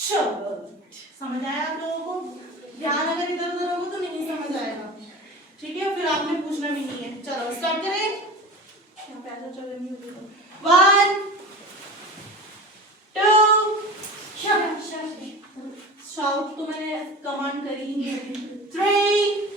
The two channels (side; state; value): both; normal; correlation 0.33